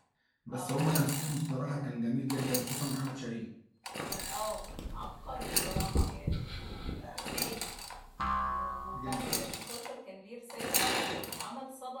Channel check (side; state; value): both; identical; correlation 1.00